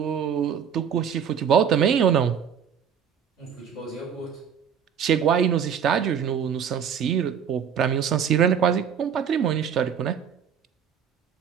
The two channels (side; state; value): left; quieter; 7.9 dB